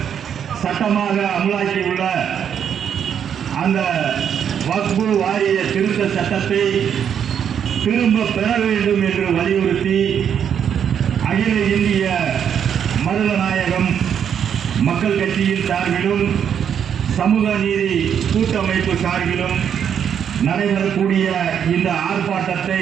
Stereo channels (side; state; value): left; quieter; 8.4 dB